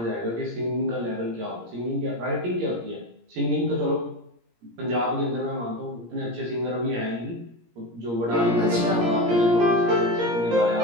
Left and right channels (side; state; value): left; late; 17 ms